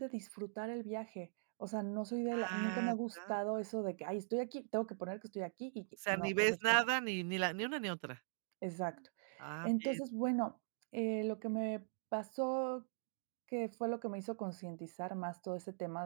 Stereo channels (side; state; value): left; silent; digital silence